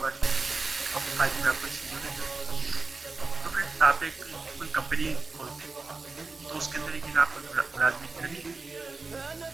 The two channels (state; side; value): quieter; left; 3.9 dB